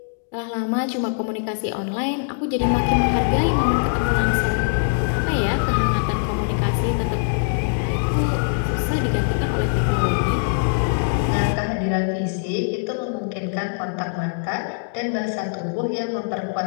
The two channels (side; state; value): right; silent; digital silence